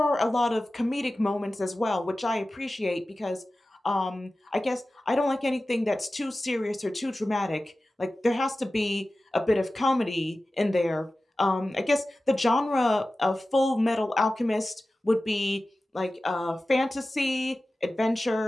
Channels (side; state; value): both; normal; correlation 0.95